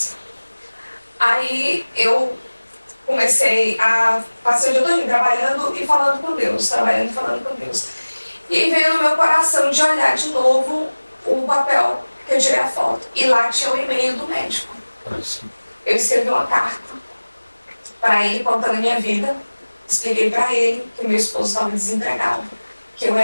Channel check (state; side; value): inverted; both; correlation -1.00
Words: Aí eu comecei a passar o dia todo trabalhando e falando com Deus, trabalhando e falando com Deus. E aí veio no meu coração de olhar de novo o papel que eu tirei a foto. E lá tinha o e-mail do médico. Eu escrevi uma carta para ele contando a minha vida. Expliquei para ele que meu esposo estava desempregado, que eu